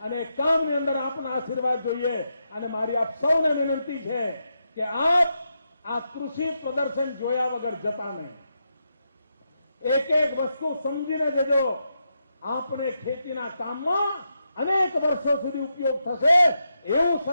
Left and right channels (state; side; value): inverted; both; correlation -0.84